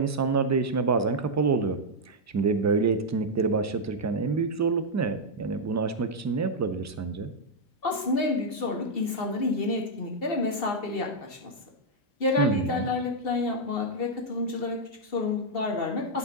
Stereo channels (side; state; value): right; late; 2.7 ms